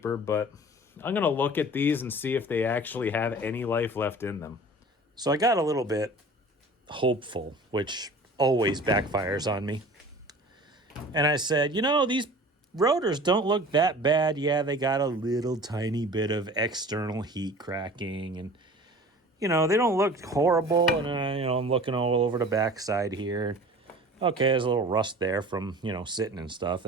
but I'm going to look at these and see if they actually have any life left in them. So I got a little bit hopeful, which always backfires on me. And I said, you know, these rotors don't look that bad. Yeah, they got a little tiny bit of external heat cracking, and you know, they don't look horrible. And I'm looking all over the backside here. Okay, there's a little rust there from, sitting and stuff.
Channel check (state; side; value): normal; both; correlation 0.43